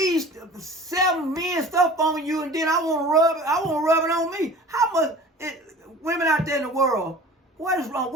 7 men stuff on you, and then I want to rub it on me. How much women out there in the world? What is wrong?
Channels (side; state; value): both; normal; correlation 0.42